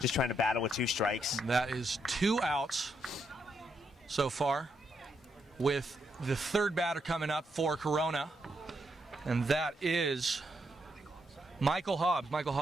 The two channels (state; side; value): normal; both; correlation 0.79